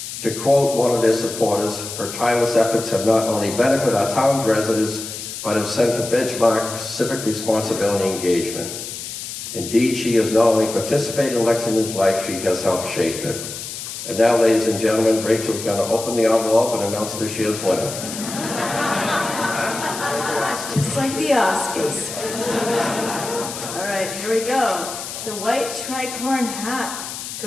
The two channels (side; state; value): left; noise; hiss, 8 dB below the sound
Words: To quote one of their supporters, her tireless efforts have not only benefited our town's residents, but have set a benchmark civic responsibility engagement. Indeed, she has not only participated in Lexington's life, she has helped shape it. And now, ladies and gentlemen, Rachel's going to open the envelope and announce this year's winner. Just like the Oscars. All right, here we go. The white tricorn hat